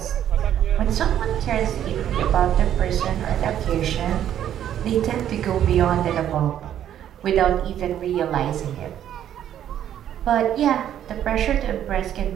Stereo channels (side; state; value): left; quieter; 10.6 dB